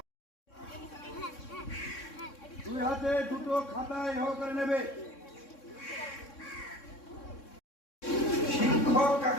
দুই হাতে দুটো খাতায় এ করে নেবে। শিক্ষক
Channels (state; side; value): late; right; 3.6 ms